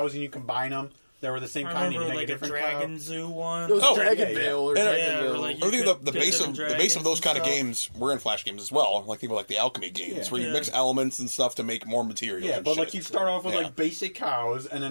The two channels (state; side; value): inverted; both; correlation -1.00